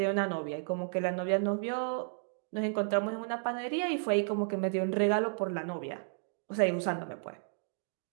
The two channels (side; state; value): left; silent; digital silence